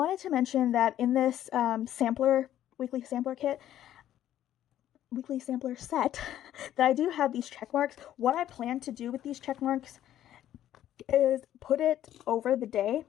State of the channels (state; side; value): quieter; right; 12.0 dB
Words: to mention that in this weekly sampler set that I do have these check marks. What I plan to do with these check marks is put it over the day.